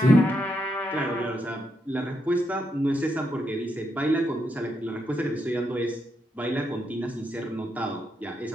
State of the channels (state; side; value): normal; both; correlation 0.81